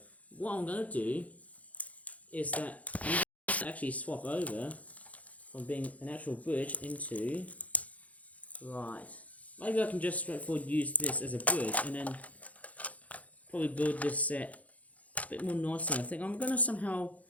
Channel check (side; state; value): right; late; 0.070 ms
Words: what I'm going to do is that I'm going to actually swap over from being an actual bridge into... Right. Maybe I can just straightforward use this as a bridge and then probably build this set a bit more nicely. I think I'm going to somehow